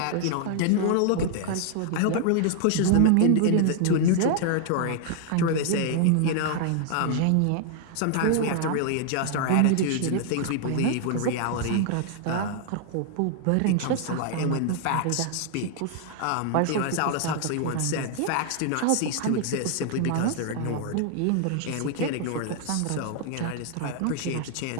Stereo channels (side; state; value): both; different; correlation 0.00